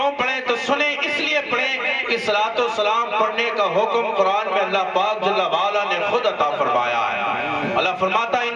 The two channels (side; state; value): both; identical; correlation 1.00